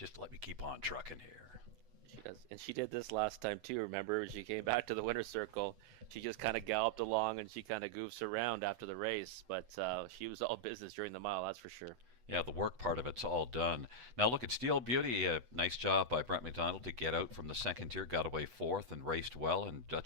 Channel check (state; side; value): late; left; 8.1 ms